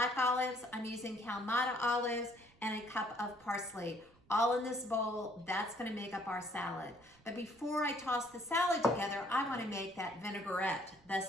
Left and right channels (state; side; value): noise; right; rumble, 29 dB below the sound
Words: olives. I'm using Kalamata olives, and a cup of parsley. All in this bowl. That's gonna make up our salad. But before I toss the salad together, I wanna make that vinaigrette, the